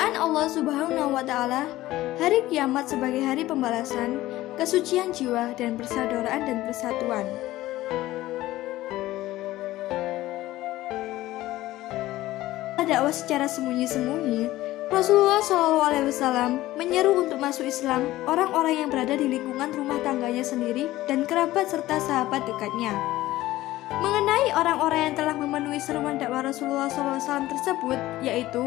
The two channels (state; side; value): quieter; right; 16.3 dB